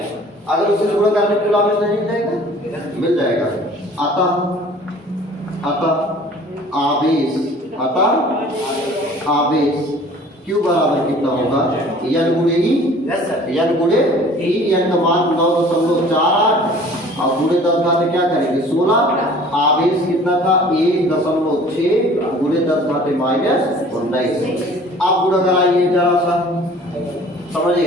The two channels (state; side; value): normal; both; correlation 0.49